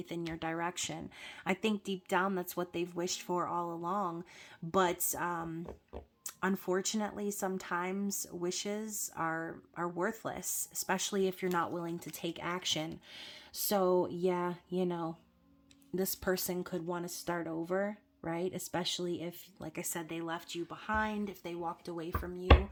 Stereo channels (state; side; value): identical; both; correlation 1.00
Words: in your direction. I think deep down that's what they've wished for all along, but unfortunately, sometimes wishes are worthless, especially if you're not willing to take action. So yeah, this person could want to start over, right? Especially if, like I said, they left you behind, if they walked away from you.